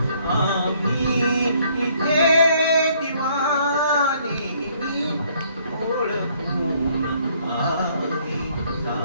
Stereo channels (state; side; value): inverted; both; correlation -0.64